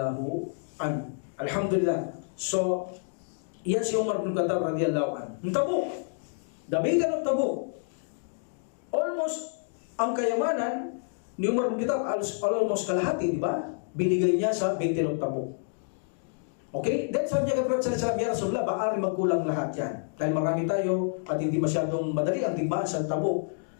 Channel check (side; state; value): right; silent; digital silence